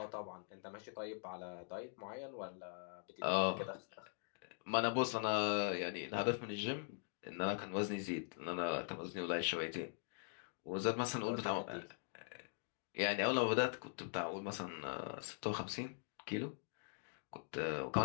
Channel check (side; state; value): right; silent; digital silence